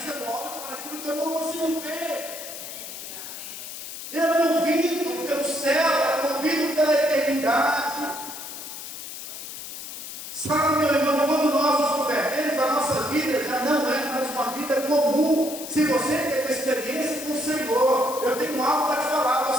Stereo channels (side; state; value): left; noise; hiss, 10 dB below the sound